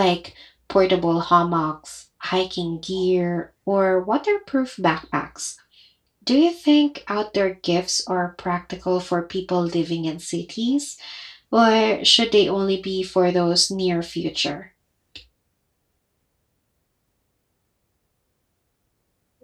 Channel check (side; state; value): both; identical; correlation 1.00